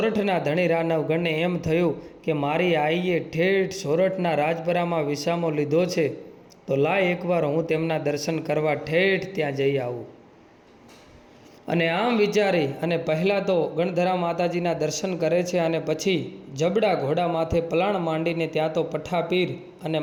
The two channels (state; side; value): identical; both; correlation 1.00